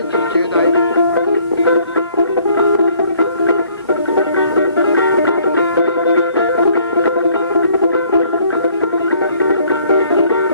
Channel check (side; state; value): both; inverted; correlation -0.60